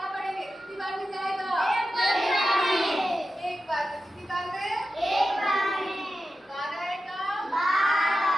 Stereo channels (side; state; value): both; normal; correlation 0.91